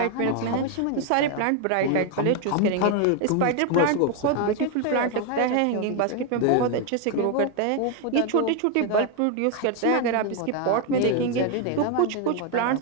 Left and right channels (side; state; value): both; different; correlation 0.01